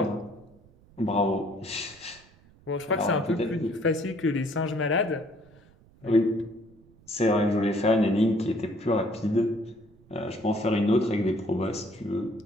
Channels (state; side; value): noise; right; rumble, 27 dB below the sound